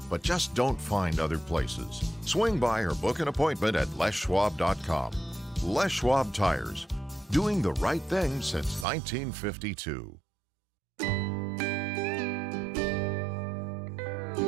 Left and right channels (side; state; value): left; drops out; at 8.8 s